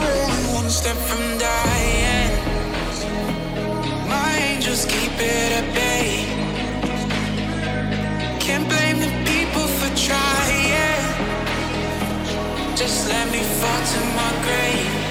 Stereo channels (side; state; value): both; identical; correlation 1.00